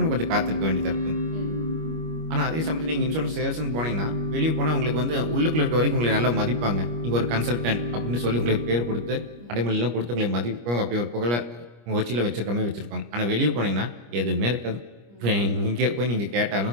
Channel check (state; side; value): late; left; 25 ms